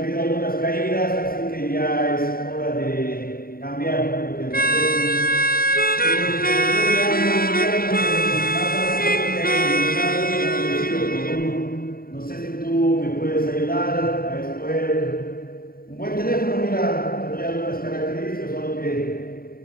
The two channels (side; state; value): right; late; 0.43 ms